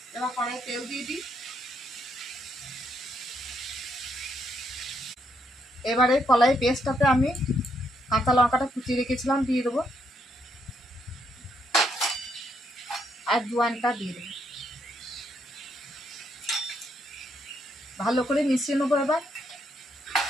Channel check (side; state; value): both; normal; correlation 0.75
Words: এবার কড়াই তেল দিয়ে দিই। এবারে কলাই পেস্টটাতে আমি কাঁচা লঙ্কাটা কুচিয়ে রেখেছিলাম দিয়ে দেবো, আর জোয়ানটা দিয়ে দেবো। ভালো করে মিশিয়ে নেবো। এবার